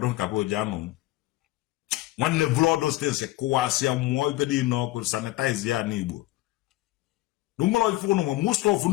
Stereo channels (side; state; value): right; quieter; 17.6 dB